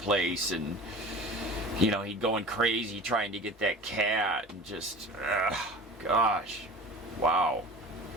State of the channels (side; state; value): both; normal; correlation 0.38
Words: and you know, he going crazy trying to get that cat, and just gosh, wow.